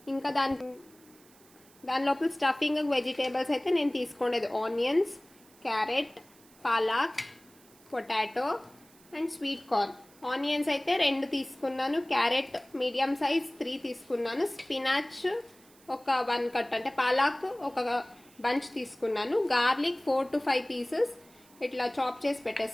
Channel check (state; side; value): noise; right; hiss, 27 dB below the sound